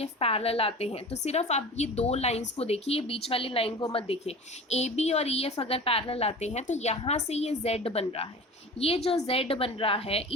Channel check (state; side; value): normal; both; correlation 0.37